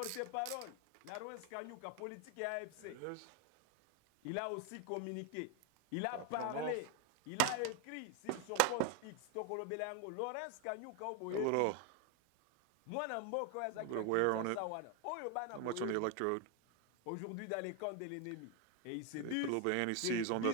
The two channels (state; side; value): different; both; correlation 0.01